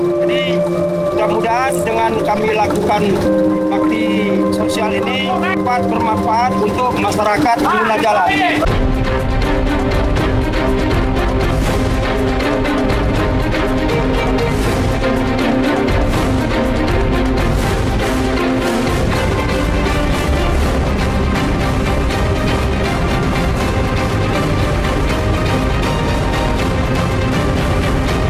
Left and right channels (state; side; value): identical; both; correlation 1.00